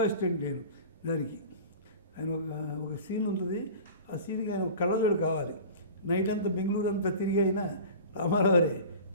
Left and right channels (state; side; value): inverted; both; correlation -0.38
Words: అసిస్టెంట్ నేను దానికి. ఆయన ఒక సీన్ ఉంటుంది, ఆ సీన్కి ఆయన ఒక కళ్ళజోడు కావాలి. నైట్ అంతా బెంగళూరు అంతా తిరిగి అయినా రామారావురే